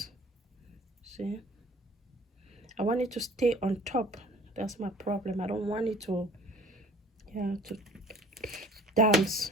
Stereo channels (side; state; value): both; normal; correlation 0.50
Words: see, I want it to stay on top. That's my problem. I don't want it to, yeah, to